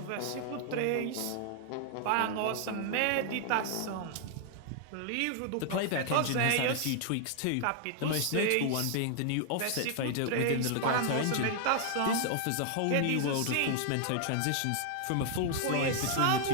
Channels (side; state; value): both; different; correlation 0.00